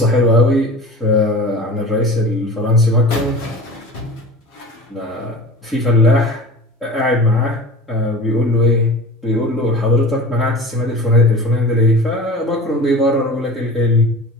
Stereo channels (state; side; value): normal; both; correlation 0.36